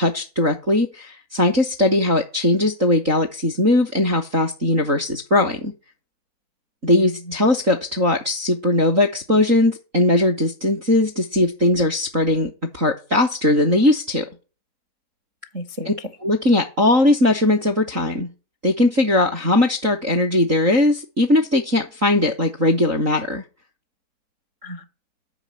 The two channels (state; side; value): late; left; 3.8 ms